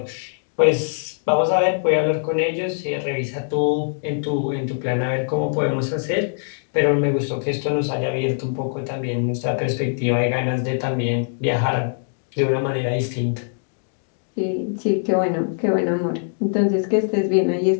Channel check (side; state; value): right; silent; digital silence